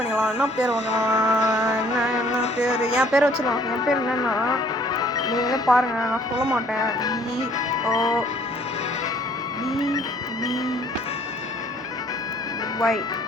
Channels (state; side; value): normal; both; correlation 0.59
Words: என்ன பேர் வாங்கலாம், என்ன பேர், என் பேரை வச்சுக்கலாம். என் பேர் என்னென்னா நீங்களே பாருங்கள், நான் சொல்ல மாட்டேன். BOBBY.